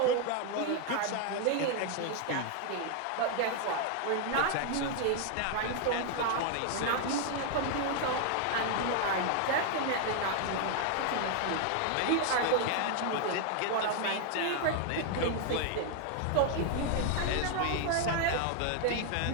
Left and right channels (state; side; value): different; both; correlation 0.00